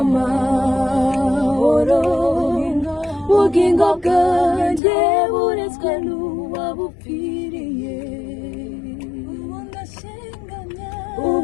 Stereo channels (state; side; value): drops out; right; at 4.8 s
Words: ubugingo bwanjye buretswe n'uwabupfiriye